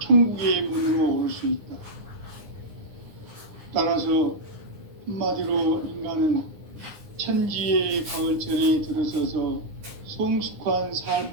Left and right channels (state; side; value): late; left; 9.8 ms